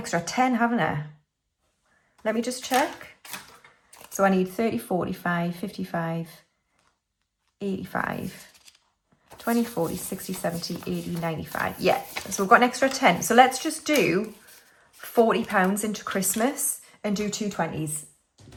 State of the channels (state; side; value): identical; both; correlation 1.00